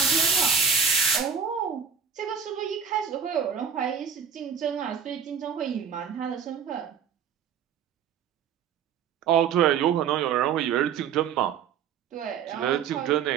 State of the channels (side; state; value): left; quieter; 7.3 dB